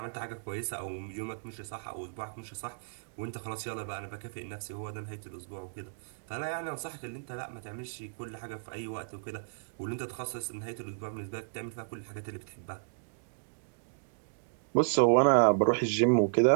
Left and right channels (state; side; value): silent; left; digital silence